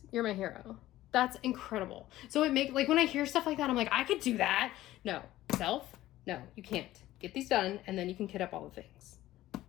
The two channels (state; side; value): quieter; right; 15.3 dB